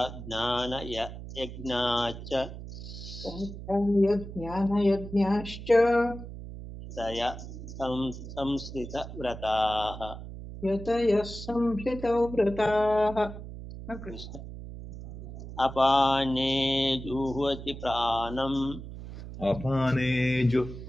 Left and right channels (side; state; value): right; noise; hum, 11 dB below the sound